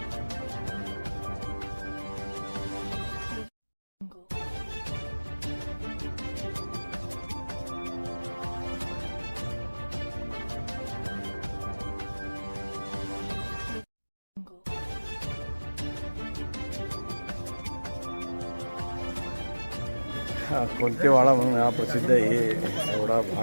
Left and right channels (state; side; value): inverted; both; correlation -1.00